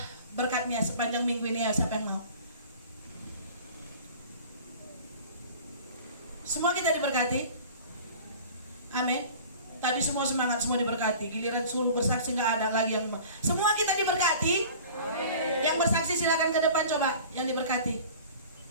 berkatnya sepanjang minggu ini ya, siapa yang mau? Semua kita diberkati? Amin. Tadi semua semangat, semua diberkati. Giliran suruh bersaksi nggak ada lagi yang semua kita diberkati. Amin. Yang bersaksi silakan ke depan coba, yang diberkati.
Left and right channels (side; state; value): both; inverted; correlation -0.43